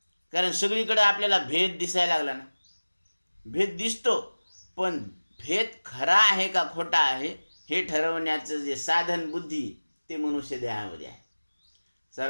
कारण सगळीकडे आपल्याला भेद दिसायला लागला ना, भेद दिसतो, पण भेद खरा आहे का खोटा आहे हे ठरवण्याचं जे साधन बुद्धी ते मनुष्य देहामध्ये आहे।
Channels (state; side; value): inverted; both; correlation -1.00